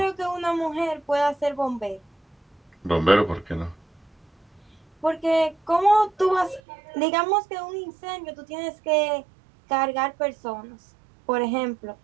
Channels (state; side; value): drops out; left; at 6.6 s